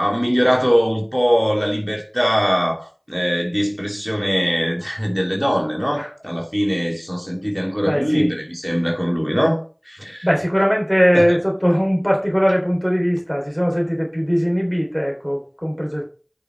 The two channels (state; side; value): identical; both; correlation 1.00